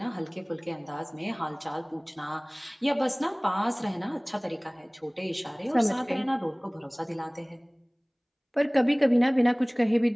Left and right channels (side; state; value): both; identical; correlation 1.00